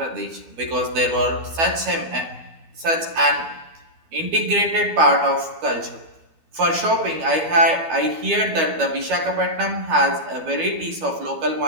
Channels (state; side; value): late; left; 12 ms